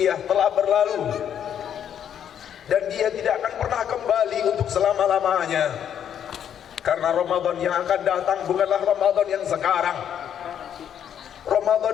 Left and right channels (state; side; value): quieter; right; 9.2 dB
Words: telah berlalu dan dia tidak akan pernah kembali untuk selama-lamanya, karena Ramadan yang akan datang bukanlah Ramadan yang sekarang.